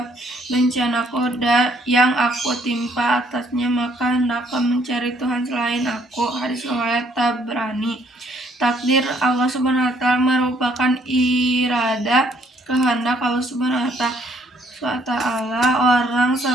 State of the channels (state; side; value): normal; both; correlation 0.66